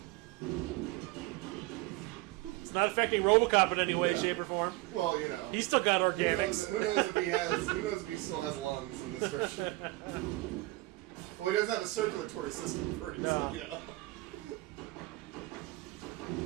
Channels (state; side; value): quieter; left; 20.5 dB